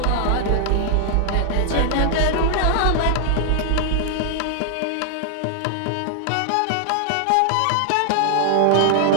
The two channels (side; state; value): both; different; correlation 0.00